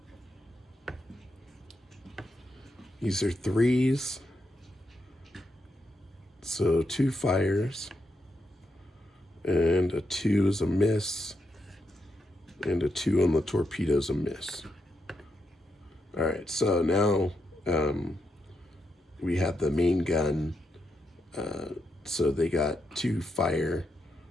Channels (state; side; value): normal; both; correlation 0.83